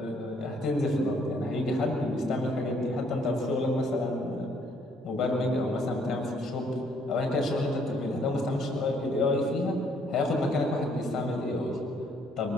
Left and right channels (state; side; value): normal; both; correlation 0.66